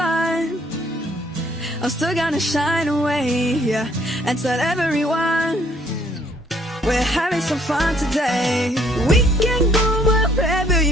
I'm still gonna shine away, yeah, and tell everyone we're having some fun today. We can go wherever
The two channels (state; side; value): normal; both; correlation 0.64